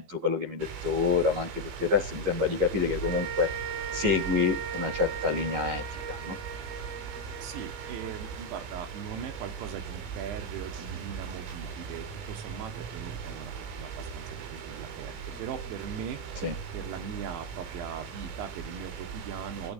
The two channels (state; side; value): late; left; 15 ms